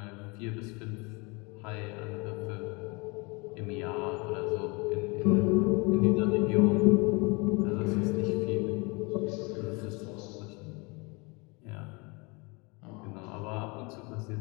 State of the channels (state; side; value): quieter; right; 28.3 dB